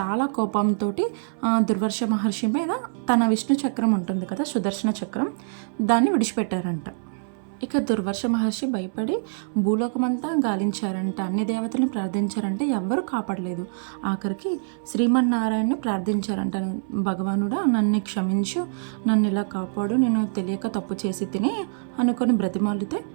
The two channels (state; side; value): silent; left; 59 dB below the other